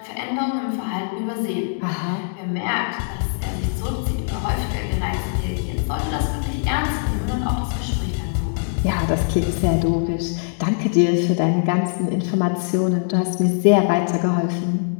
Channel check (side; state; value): right; silent; digital silence